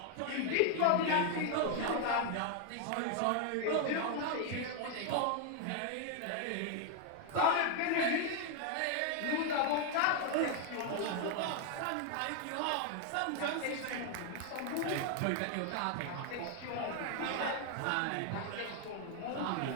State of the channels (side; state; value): both; different; correlation 0.00